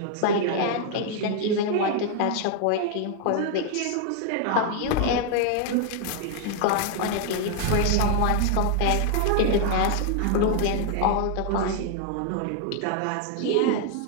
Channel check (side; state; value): both; different; correlation 0.00